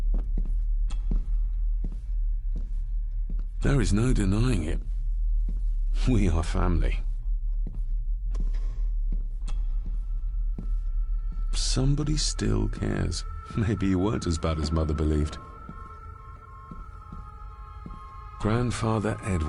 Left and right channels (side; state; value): both; identical; correlation 1.00